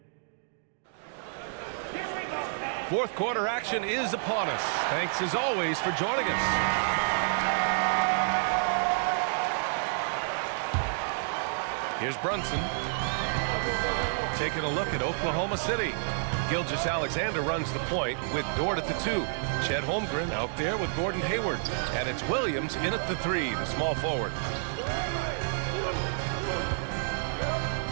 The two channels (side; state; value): left; silent; digital silence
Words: fourth quarter action is upon us. Thanks as always for joining us. Here's Brunson. Taking a look at Oklahoma City. Gilgeous-Alexander runs the point with Dort at the 2. Chet Holmgren out there with Gordon Hayward. And it's Williams in at the 3, the small forward.